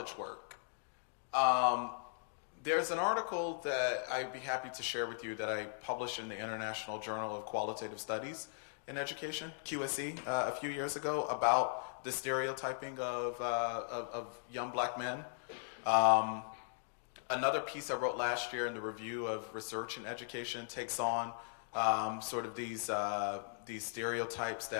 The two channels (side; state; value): right; silent; digital silence